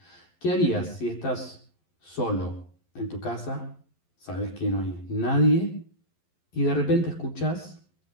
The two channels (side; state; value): right; late; 11 ms